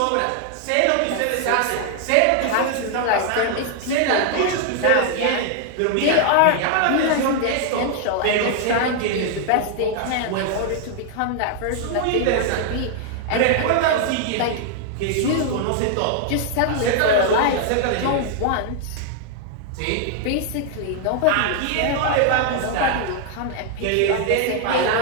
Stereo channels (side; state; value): both; different; correlation 0.00